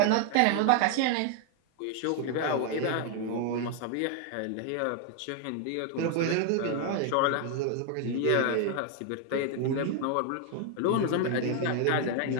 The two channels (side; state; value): both; different; correlation 0.01